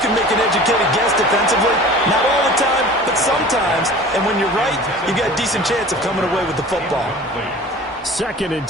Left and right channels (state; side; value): normal; both; correlation 0.41